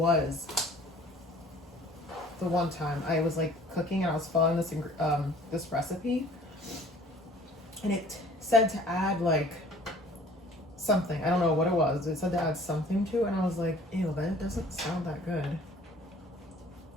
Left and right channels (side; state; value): both; normal; correlation 0.52